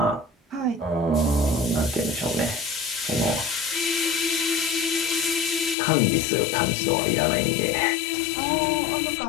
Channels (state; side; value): drops out; right; at 5.8 s